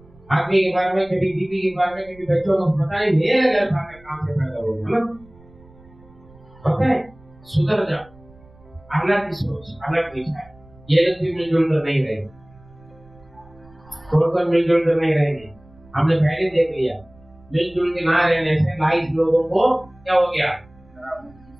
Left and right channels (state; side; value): noise; right; rumble, 26 dB below the sound